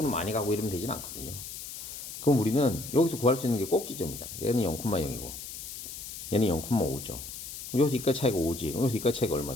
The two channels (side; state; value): left; noise; hiss, 10 dB below the sound